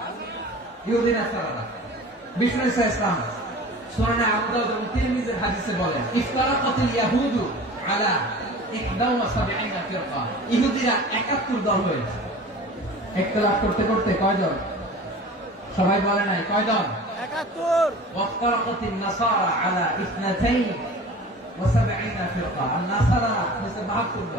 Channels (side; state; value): both; normal; correlation 0.40